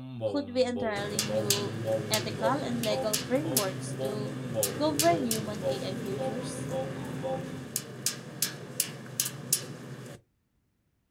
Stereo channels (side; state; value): both; identical; correlation 1.00